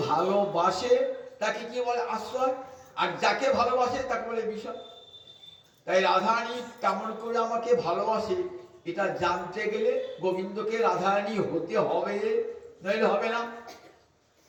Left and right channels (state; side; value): identical; both; correlation 1.00